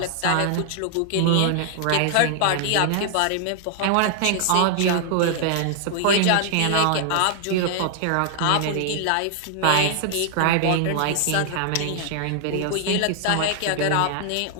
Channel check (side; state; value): both; different; correlation -0.01